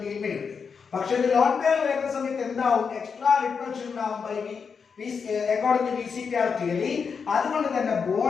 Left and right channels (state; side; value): quieter; right; 5.9 dB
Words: മിനിറ്റ്. പക്ഷെ ഒരു ലോൺ പെയർ വരുന്ന സമയത്ത് എന്താവും? എക്സ്ട്രാ റിപ്പൾഷൻ ഉണ്ടാവും അക്കോർഡിംഗ് ടു VCPR തിയറി. അതുകൊണ്ട് തന്നെ